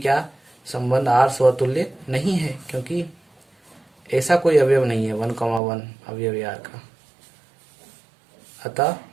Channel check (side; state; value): left; drops out; at 5.6 s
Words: संबंध r स्वतुल्य नहीं है, क्योंकि ऐसा कोई अवयव नहीं है 1,1 अवयव है r का। अतः